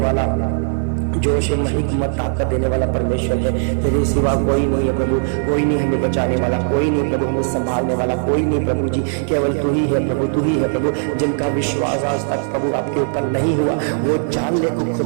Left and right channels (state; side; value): silent; left; digital silence